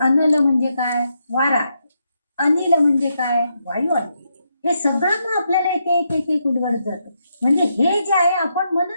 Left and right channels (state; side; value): inverted; both; correlation -0.81